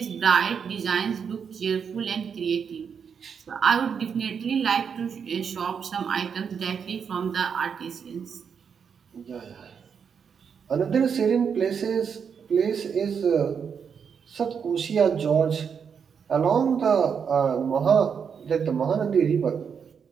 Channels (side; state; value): left; quieter; 6.8 dB